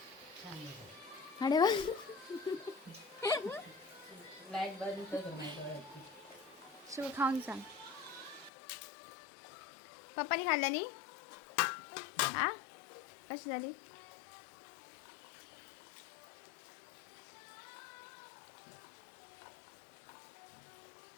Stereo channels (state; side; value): drops out; right; at 8.5 s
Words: अरे वा लाईट बंद कर नाही सगळं खाऊन सांग पप्पानी खाल्ल्यानी हा कशी झाली